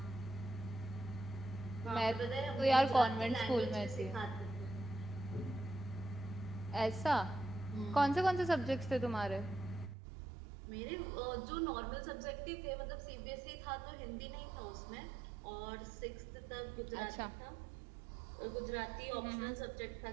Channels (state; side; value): drops out; left; at 10.0 s